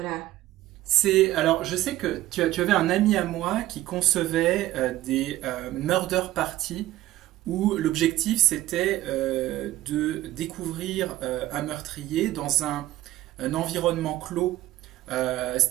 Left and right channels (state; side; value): quieter; left; 15.3 dB